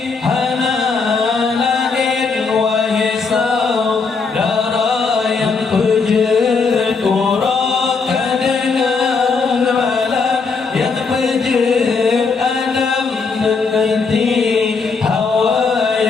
hana lahir wahai saudara yang pejat urakan dengan malam yang pejat Adam dengan Hawa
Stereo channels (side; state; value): right; quieter; 4.7 dB